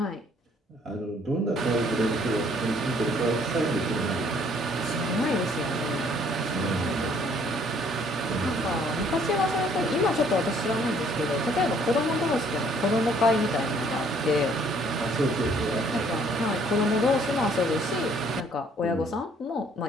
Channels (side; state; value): both; normal; correlation 0.61